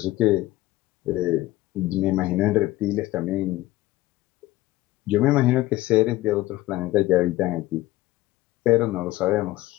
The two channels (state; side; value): quieter; right; 17.2 dB